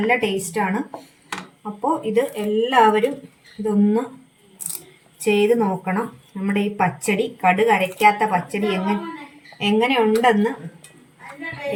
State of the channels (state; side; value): identical; both; correlation 1.00